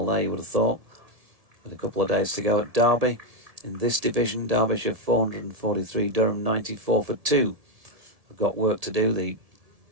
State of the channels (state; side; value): late; left; 1.7 ms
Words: there, you would have thought, with a couple of days to go. At Derby, in this division, Derbyshire 443, Durham 94 for 2. I've got work to do, the